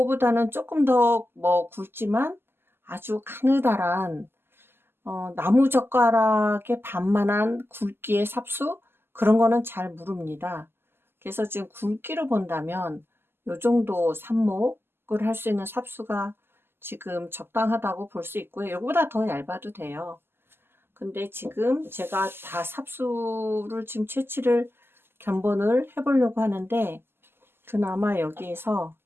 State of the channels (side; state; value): left; late; 0.11 ms